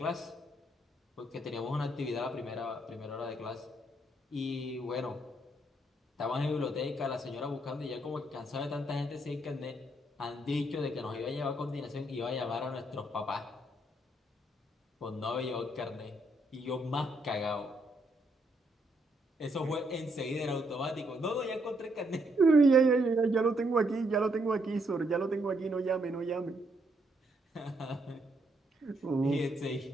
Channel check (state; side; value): normal; both; correlation 0.74